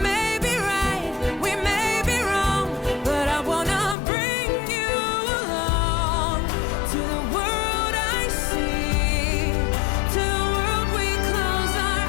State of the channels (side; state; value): right; drops out; at 4.0 s